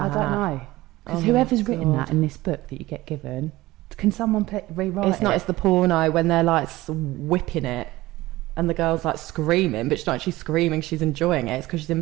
I don't know. Because Oh whoever's my written God. that in this book that you get given, can someone rewrite it? It's not. It's the porno when they're like whipping it, and the girl's like screaming, but she's not actually screaming. She's enjoying it. It's because she's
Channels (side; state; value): left; quieter; 18.3 dB